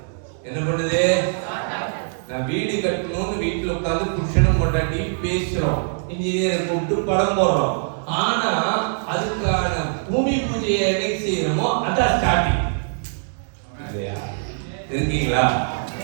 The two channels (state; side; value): silent; left; digital silence